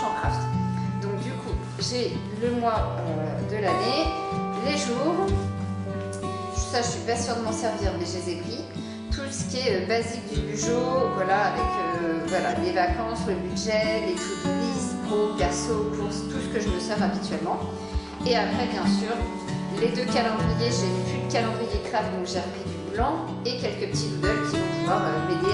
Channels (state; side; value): identical; both; correlation 1.00